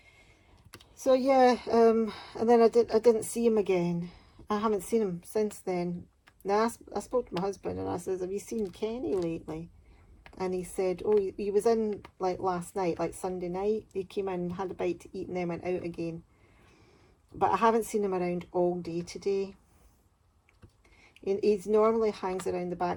so yeah, and then I didn't see him again. I haven't seen him since then. Now I spoke to my husband and I said, have you seen Kenny lately? And he said, oh, he was in like last night, like Sunday night. He came in, had a bite to eat, and then went out again. But I haven't seen him around all day today. He normally hangs around the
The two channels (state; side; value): identical; both; correlation 1.00